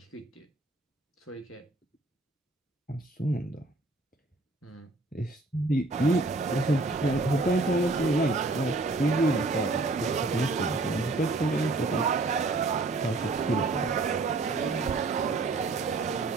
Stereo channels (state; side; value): quieter; left; 3.2 dB